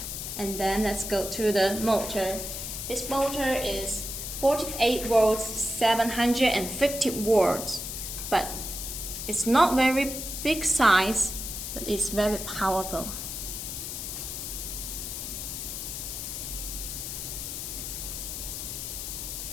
And then let's go to the motor. This motor is 48 volts, 750 watts, but it's not very big size, but it's very powerful.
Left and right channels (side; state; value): left; noise; hiss, 6 dB below the sound